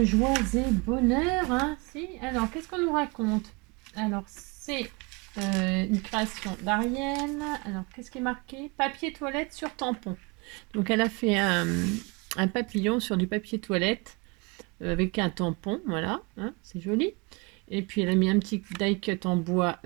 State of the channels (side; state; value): left; quieter; 28.2 dB